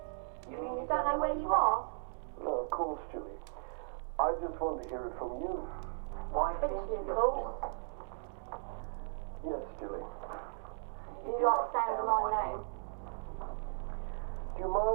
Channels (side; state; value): left; silent; digital silence